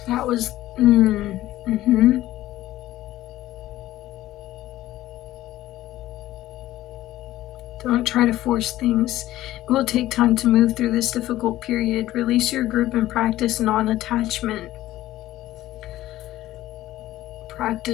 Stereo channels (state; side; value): quieter; right; 15.0 dB